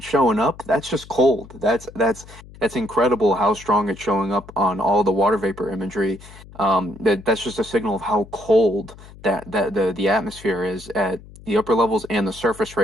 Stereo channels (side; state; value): left; noise; hum, 19 dB below the sound